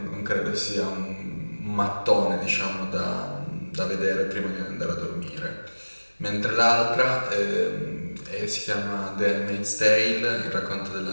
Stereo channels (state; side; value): inverted; both; correlation -1.00